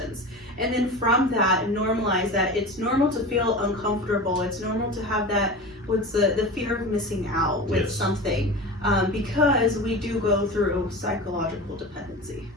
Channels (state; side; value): normal; both; correlation 0.30